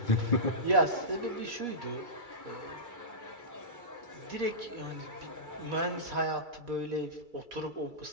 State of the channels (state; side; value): late; left; 2.3 ms